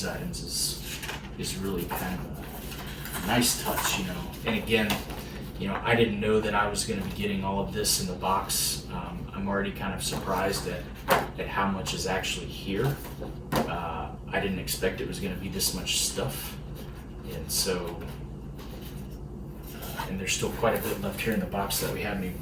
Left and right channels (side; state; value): both; identical; correlation 1.00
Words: items is really kind of a nice touch, you know. And again, you know, I didn't know that I was going to be getting all of this in the box. I'm already kind of surprised at how much is actually here. I didn't expect it was going to be this much stuff, and so, and there's still quite a bit left here in the box that we haven't